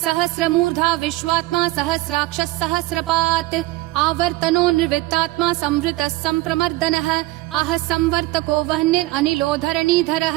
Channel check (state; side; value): quieter; left; 19.3 dB